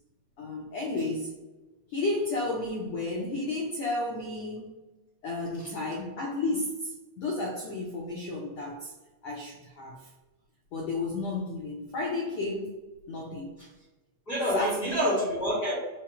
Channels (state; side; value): late; right; 8.5 ms